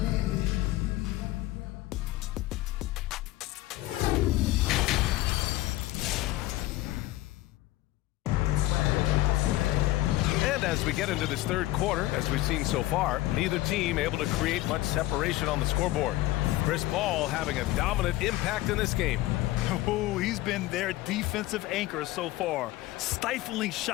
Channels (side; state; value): right; quieter; 17.1 dB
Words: As we get into this third quarter, as we've seen so far, neither team able to create much separation on the scoreboard. Chris Paul having a dominant impact in this game. Oh, he's been their defensive anchor so far, stifling